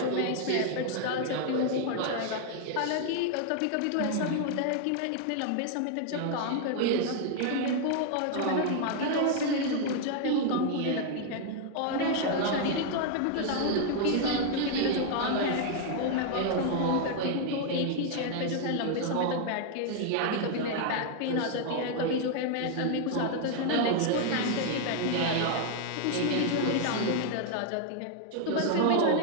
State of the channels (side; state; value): both; different; correlation 0.00